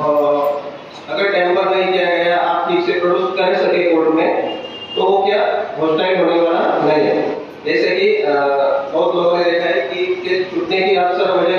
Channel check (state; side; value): identical; both; correlation 1.00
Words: अगर टेम्पर नहीं किया गया, आप ठीक से प्रोड्यूस कर सके कोर्ट में, तो वो क्या होस्टाइल होने वाला नहीं है। जैसे कि बहुत लोगों ने देखा है कि केस छूटने की अक्सर